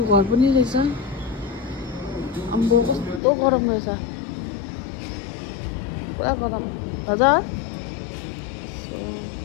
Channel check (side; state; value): right; drops out; at 3.2 s